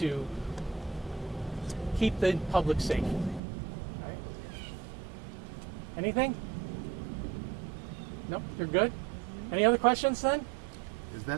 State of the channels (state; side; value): drops out; left; at 3.4 s